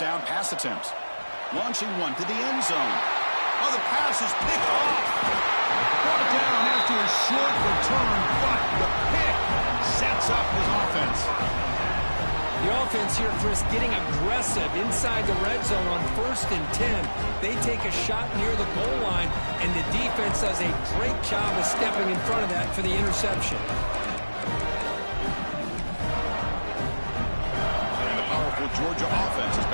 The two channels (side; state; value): both; inverted; correlation -1.00